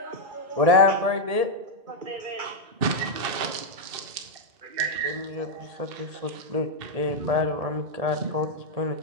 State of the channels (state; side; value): late; left; 2.6 ms